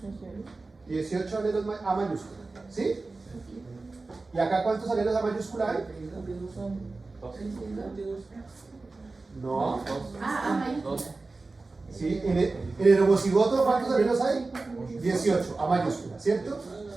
18 alelos a mayúscula. ¿Sí? ¿Y acá cuántos alelos a mayúscula hay? No. ¿Sí? En el homocigoto, ¿cuántos alelos hay? 18 a mayúscula, ¿cierto?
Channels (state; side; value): quieter; left; 3.6 dB